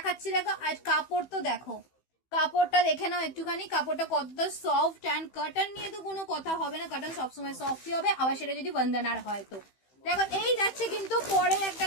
দেখো। আর কাপড় তো দেখো, কাপড়টা দেখে নাও একটুখানি, কাপড়টা কতটা সফট অ্যান্ড কটন নিয়ে তো কোনো কথা হবে না, কটন সবসময় সফটই হবে, আবার সেটা যদি বন্দনার হয় তো। দেখো এই যাচ্ছে কিন্তু পরে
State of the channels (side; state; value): right; late; 15 ms